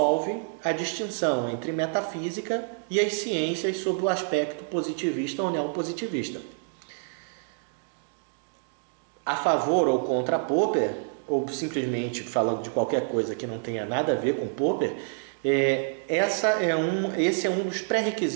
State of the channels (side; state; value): left; silent; digital silence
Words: a distinção entre metafísica e as ciências sob o aspecto positivista ou neopositivista. A favor ou contra Popper, ou simplesmente falando de qualquer coisa que não tenha nada a ver com Popper, esse é um dos